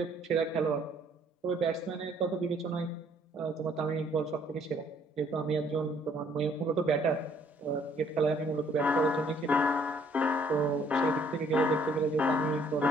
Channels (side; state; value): both; normal; correlation 0.63